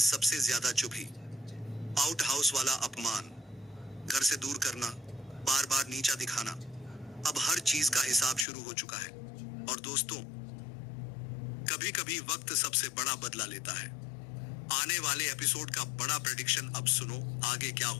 सबसे ज्यादा चुभी। आउट हाउस वाला अपमान, घर से दूर करना, बार बार नीचा दिखाना, अब हर चीज का हिसाब शुरू हो चुका है। और दोस्तों, कभी कभी वक्त सबसे बड़ा बदला लेता है। आने वाले एपिसोड का बड़ा प्रेडिक्शन अब सुनो, आगे क्या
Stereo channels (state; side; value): drops out; right; at 8.5 s